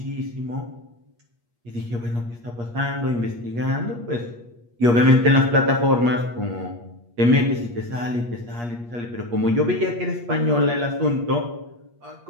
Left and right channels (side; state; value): left; late; 8.4 ms